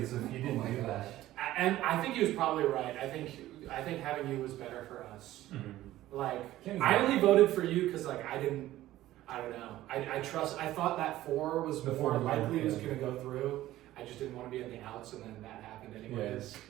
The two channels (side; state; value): left; quieter; 14.9 dB